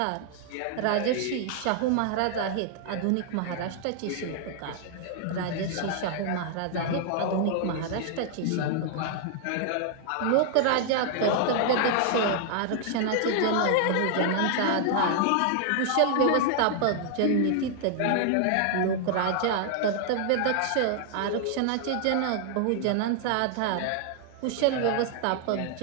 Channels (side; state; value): both; different; correlation 0.00